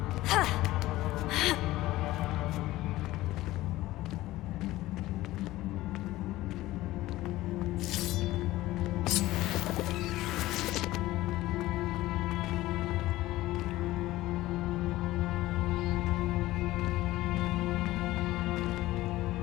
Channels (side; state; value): right; quieter; 17.0 dB